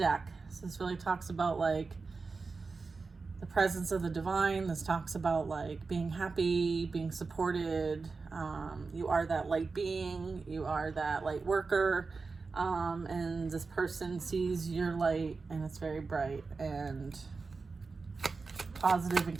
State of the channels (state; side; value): quieter; left; 4.3 dB